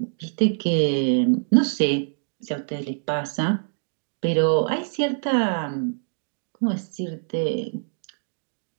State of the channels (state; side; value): silent; left; digital silence